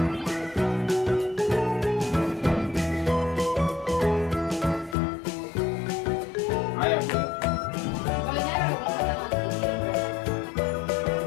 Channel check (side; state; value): right; drops out; at 5.0 s